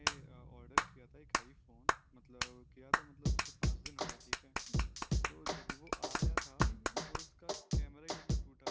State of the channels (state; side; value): identical; both; correlation 1.00